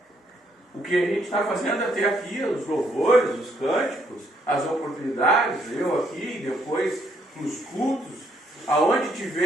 O que a gente está fazendo até aqui, os louvores, os cânticos, as oportunidades, eu aqui, depois nos cultos, aonde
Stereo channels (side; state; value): both; normal; correlation 0.70